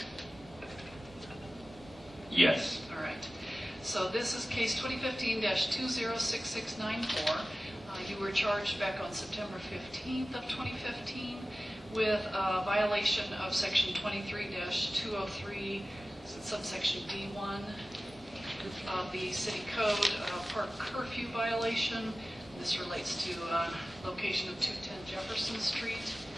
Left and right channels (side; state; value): both; normal; correlation 0.97